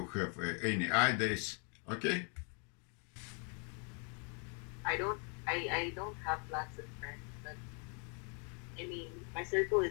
have any ideas, okay? I don't have lots of friends, but I mean, my circle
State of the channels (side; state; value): right; quieter; 38.4 dB